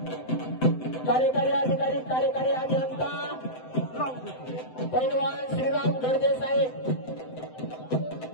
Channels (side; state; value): right; late; 7.8 ms